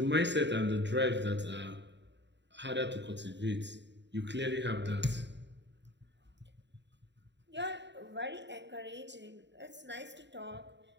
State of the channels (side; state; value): left; late; 0.52 ms